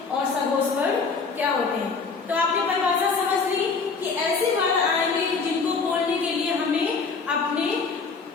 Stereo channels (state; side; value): quieter; right; 4.8 dB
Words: और सघोष वर्ड क्या होते हैं। तो आपने परिभाषा समझ ली कि ऐसे वर्ड आएंगे जिनको बोलने के लिए हमें अपने